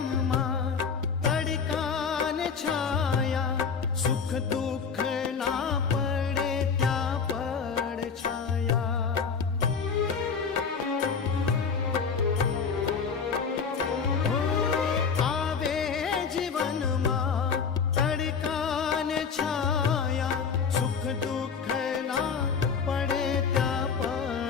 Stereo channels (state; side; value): quieter; right; 5.9 dB